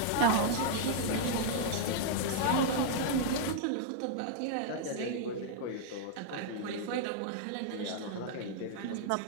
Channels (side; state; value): both; different; correlation -0.01